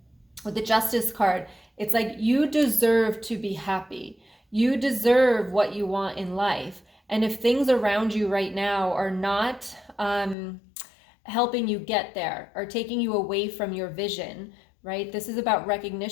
With the Justice card, it's like you deserve to be happy. You deserve what you want in life. And if things around you right now are not helping you get there or taking you away from your vision, right? This is about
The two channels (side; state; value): right; drops out; at 10.4 s